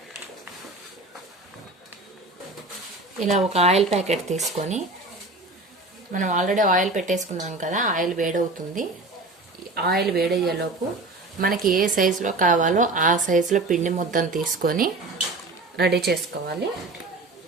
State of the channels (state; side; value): quieter; left; 3.1 dB